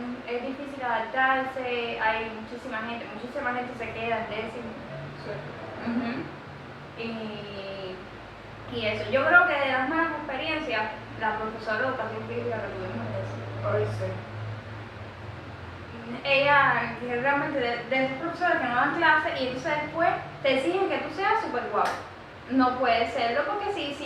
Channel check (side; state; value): both; identical; correlation 1.00